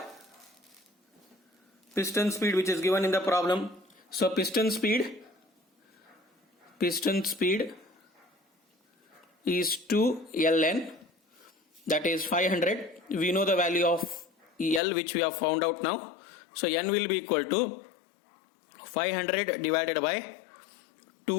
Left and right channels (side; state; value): right; drops out; at 14.8 s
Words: piston speed which is given in the problem. So piston speed is 2 ln, that is 500. We know the value of L which we have found out now. So N will be equal to 500 divided by